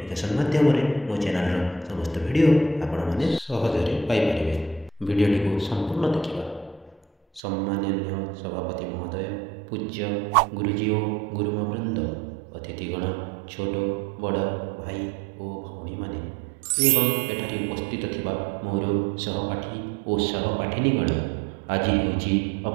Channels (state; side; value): drops out; left; at 7.4 s